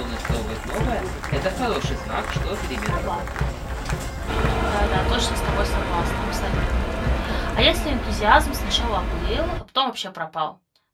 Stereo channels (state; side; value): identical; both; correlation 1.00